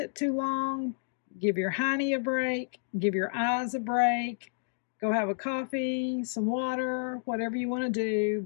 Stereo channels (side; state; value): right; silent; digital silence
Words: too long. Give your honey a break. Give your eyes a break. Go have a coffee, some water, whatever you want to do,